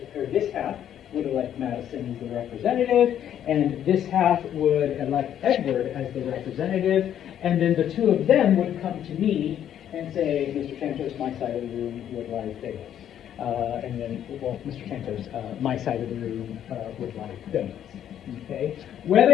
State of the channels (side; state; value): right; quieter; 10.3 dB